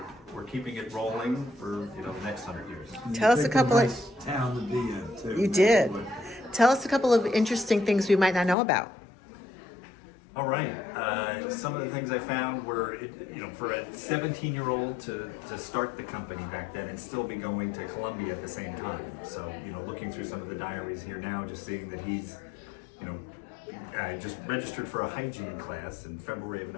keeping it rolling for the next 100 years. Tell us a couple nice town to be in too. You did. Tell us a couple of interesting things we might not know about. All right. Some of the things I found were, for a 17-year-old to start the company back then and still be going to Columbia at the same time. So, looking through some of the diaries here now, just seeing that he's, just registered for a hygiene class in February of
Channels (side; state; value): right; drops out; at 8.6 s